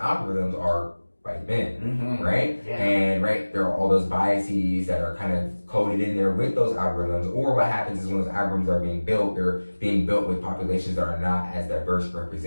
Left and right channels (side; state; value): both; inverted; correlation -1.00